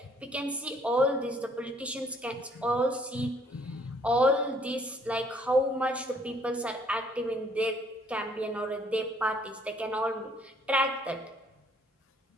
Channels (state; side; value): normal; both; correlation 0.63